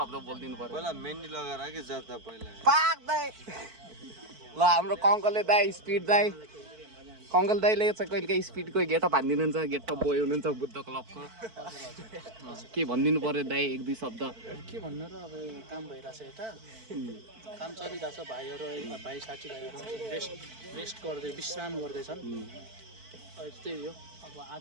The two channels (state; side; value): late; left; 4.5 ms